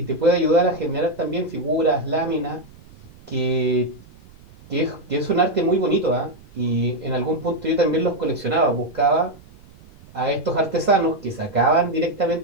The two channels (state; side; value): noise; right; rumble, 23 dB below the sound